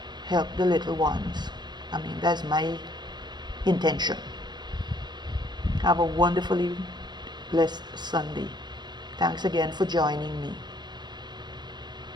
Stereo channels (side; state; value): left; late; 0.21 ms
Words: Help the little ones. That's my intention. Have a wonderfully blessed Sunday. Thanks again for joining me.